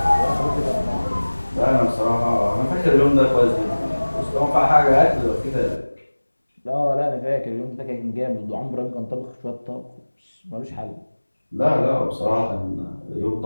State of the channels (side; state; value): both; inverted; correlation -1.00